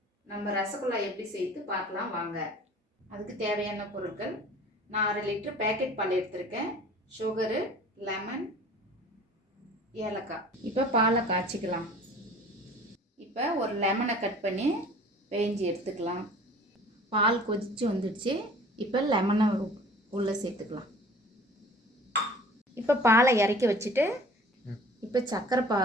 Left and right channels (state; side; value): normal; both; correlation 0.47